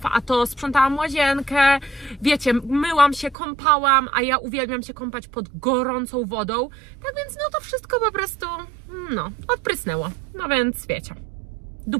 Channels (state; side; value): drops out; left; at 3.4 s